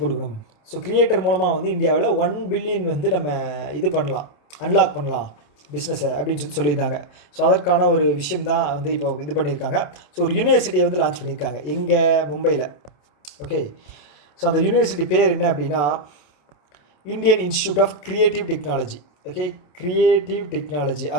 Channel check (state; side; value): late; right; 27 ms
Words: கொடுக்கணும். ஸோ கிரியேட்டர் மூலமாக வந்து இந்தியாவில் 1 பில்லியன் வந்து நம்ம இது பண்ணலாம், அன்லாக் பண்ணலாம் பிஸ்னஸை அப்படின்னு சொல்லியிருந்தாங்க. ஸோ அதற்கான ஒரு விஷயம் தான் வந்து இப்போ இது பண்ணியிருக்காங்க. ஸோ ஒரு யூனிவர்சிட்டியை வந்து லான்ச் பண்ணியிருக்காங்க எங்கே? மும்பையில். ஓகே, ஸோ அந்த யூனிவர்சிட்டி பேர் என்ன அப்படின்னா Indian institute of creative technology. Okay, creative technology